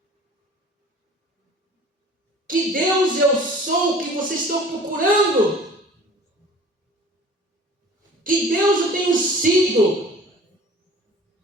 Que Deus eu sou que vocês estão procurando? Que Deus eu tenho sido?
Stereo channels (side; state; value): both; normal; correlation 0.46